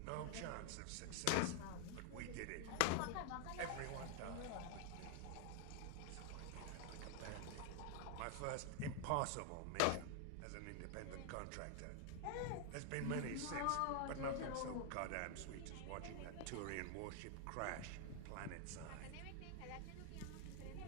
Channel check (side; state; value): both; different; correlation 0.00